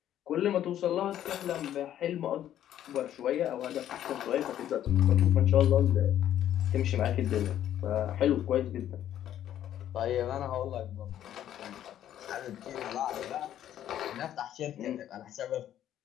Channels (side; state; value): right; quieter; 11.3 dB